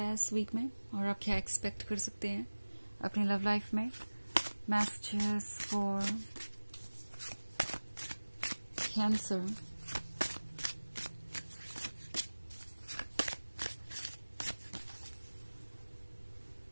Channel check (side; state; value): both; inverted; correlation -1.00